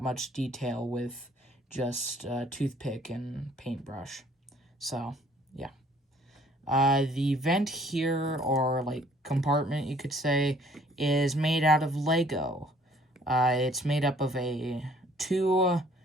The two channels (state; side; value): normal; both; correlation 0.58